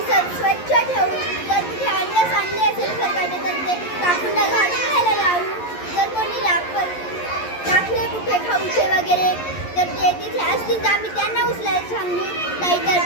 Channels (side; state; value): right; late; 11 ms